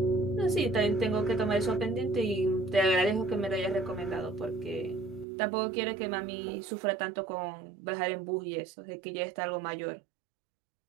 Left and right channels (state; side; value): drops out; left; at 5.2 s